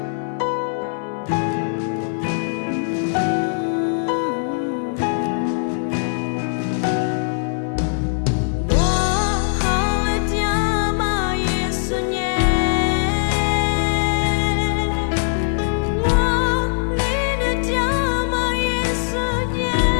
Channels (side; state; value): right; silent; 65 dB below the other